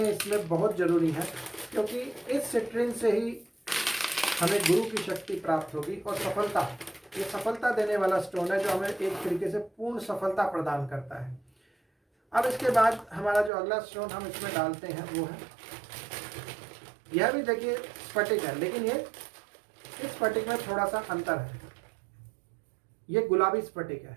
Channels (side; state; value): left; drops out; at 13.5 s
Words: इसमें बहुत ज़रूरी है, क्योंकि इस सिट्रेन से ही हमें गुरु की शक्ति प्राप्त होगी और सफलता, ये सफलता देने वाला स्टोन है जो हमें एक तरीके से पूर्ण सफलता प्रदान करता है। अब इसके बाद हमारा जो अगला स्टोन हम इसमें डालते हैं वो है, यह भी देखिए स्फटिक है, लेकिन ये इस स्फटिक में थोड़ा सा अंतर है। ये गुलाबी स्फटिक है।